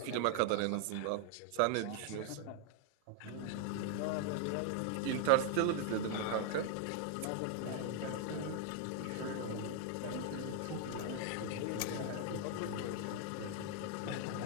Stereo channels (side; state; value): both; different; correlation 0.00